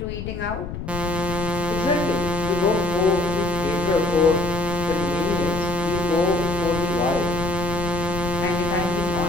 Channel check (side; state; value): left; noise; rumble, 7 dB below the sound